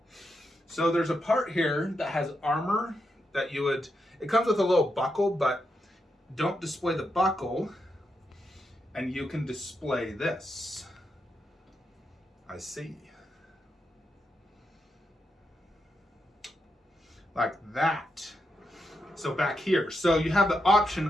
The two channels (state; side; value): normal; both; correlation 0.84